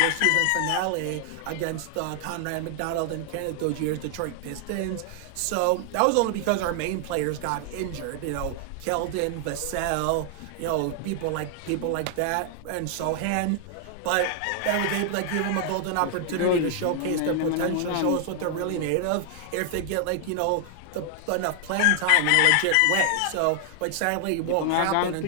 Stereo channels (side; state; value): both; different; correlation 0.00